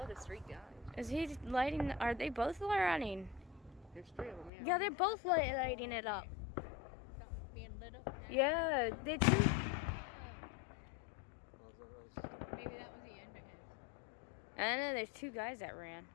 there's 3 guys. Is he lighting? Are they both lighting? There's 3 of them, yeah. Yeah, they're both lighting it up. Something's being lit up now. Yeah, they too. Maybe that was the end of it. I know there's 2 guys that ran.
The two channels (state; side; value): drops out; right; at 4.5 s